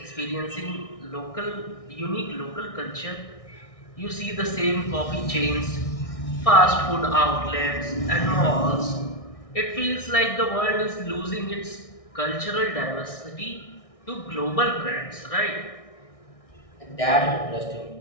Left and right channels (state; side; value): late; right; 1.6 ms